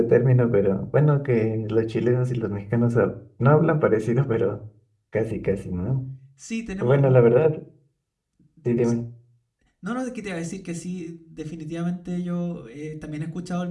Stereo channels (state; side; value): identical; both; correlation 1.00